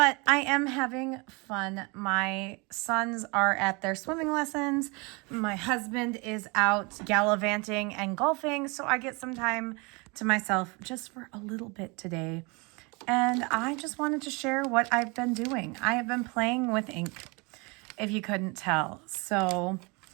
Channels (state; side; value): quieter; left; 28.6 dB